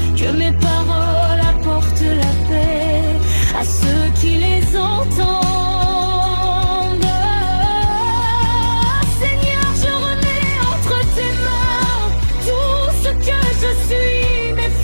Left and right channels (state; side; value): inverted; both; correlation -1.00